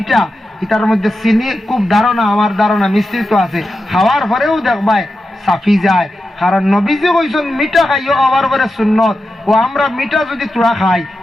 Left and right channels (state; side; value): normal; both; correlation 0.90